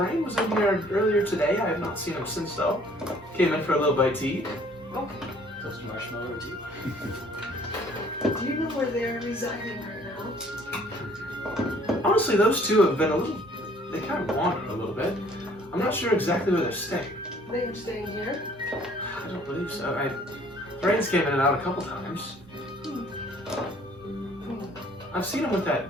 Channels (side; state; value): both; normal; correlation 0.57